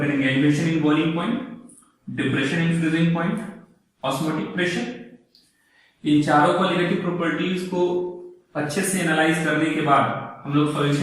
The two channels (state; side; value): identical; both; correlation 1.00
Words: elevation in boiling point, depression in freezing point, osmotic pressure. इन चारों कॉलिगेटिव प्रॉपर्टीज को अच्छे से एनालाइज करने के बाद हम लोग